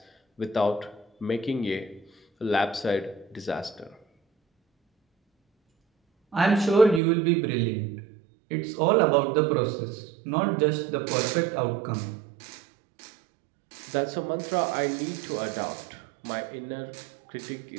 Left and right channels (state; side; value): drops out; left; at 7.0 s